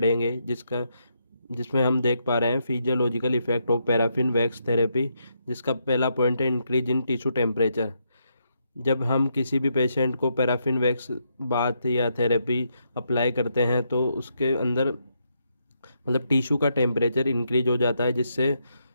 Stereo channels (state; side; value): inverted; both; correlation -0.79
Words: जिसमें हम देख पा रहे हैं physiological effect of paraffin wax therapy. जिसका पहला पॉइंट है इंक्रीज इन टिश्यू टेम्परेचर। जब हम किसी भी पेशेंट को पैराफिन वैक्स बात या थेरेपी अप्लाई करते हैं तो उसके अंदर मतलब टिश्यू का टेम्परेचर इंक्रीज हो जाता है, जिससे